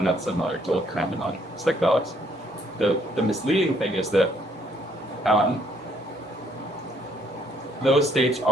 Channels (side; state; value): both; normal; correlation 0.67